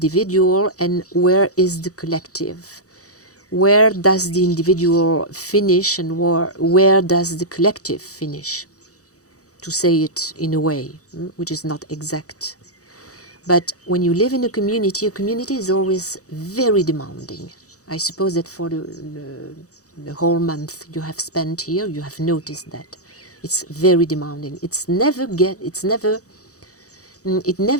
and where is the collective? Where does the individual finish and where does the collective finish? To say it in a way which is not exact. But when you live in a community is always very demanding. I suppose that for the whole month you have spent here, you have noticed that it's very demanding. It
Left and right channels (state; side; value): late; right; 0.66 ms